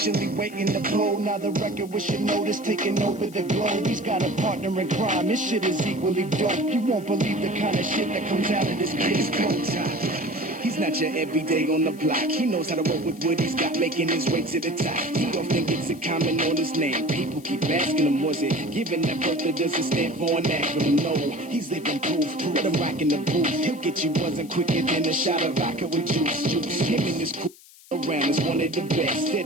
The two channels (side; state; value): left; noise; hiss, 23 dB below the sound